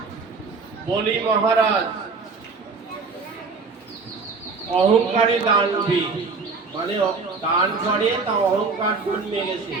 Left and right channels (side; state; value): left; quieter; 4.4 dB